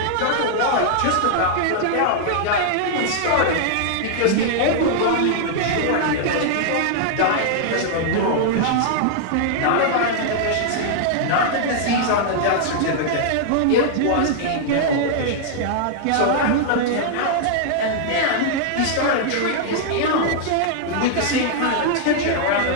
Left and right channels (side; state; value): both; different; correlation -0.01